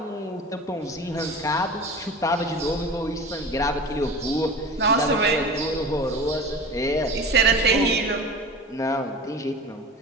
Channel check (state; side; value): normal; both; correlation 0.34